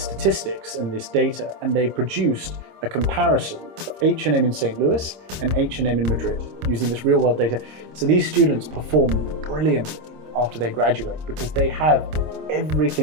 and this data, and they produced a comparison of H&M in St. Louis and H&M in Madrid using this real-world data. So these students perform brilliantly after they graduate because they have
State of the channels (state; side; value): late; left; 26 ms